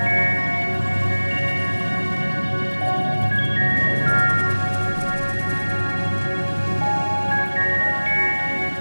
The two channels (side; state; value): both; inverted; correlation -1.00